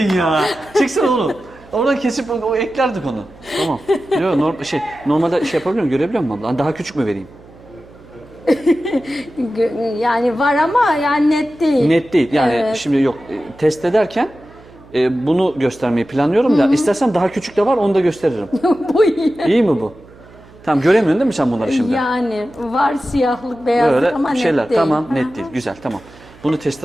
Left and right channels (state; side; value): noise; right; hum, 23 dB below the sound